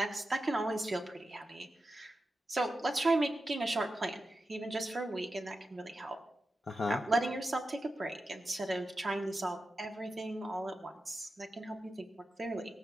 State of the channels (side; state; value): both; normal; correlation 0.91